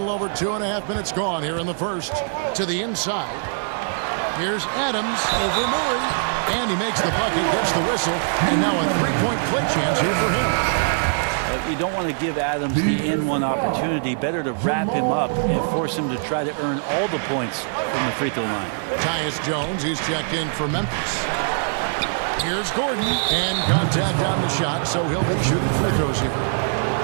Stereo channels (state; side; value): silent; left; 64 dB below the other